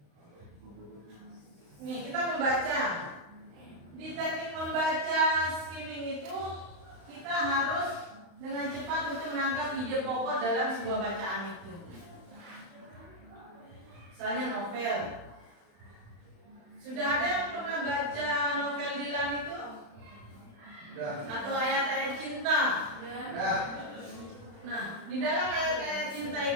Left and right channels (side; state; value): left; late; 35 ms